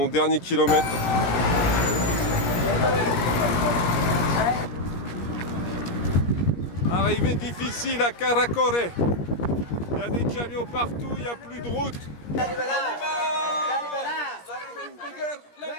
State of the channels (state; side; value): late; right; 17 ms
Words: dernier kilomètre. Arrivée difficile à Karakorum. Il y a des camions partout, il n'y a plus de route.